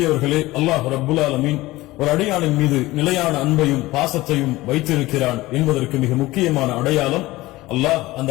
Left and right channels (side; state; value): right; quieter; 18.8 dB